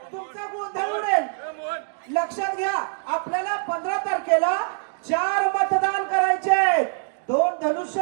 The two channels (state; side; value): silent; left; digital silence